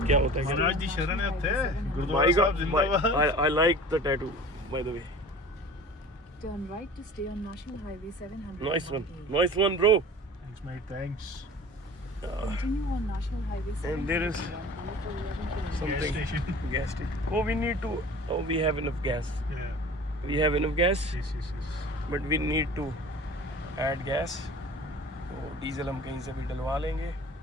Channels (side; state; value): both; normal; correlation 0.41